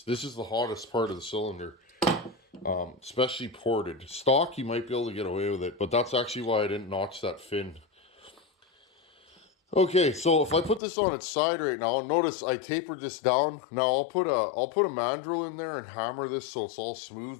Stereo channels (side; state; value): right; drops out; at 10.8 s